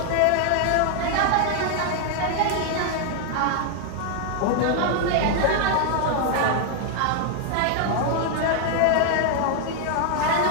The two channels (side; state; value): both; different; correlation 0.00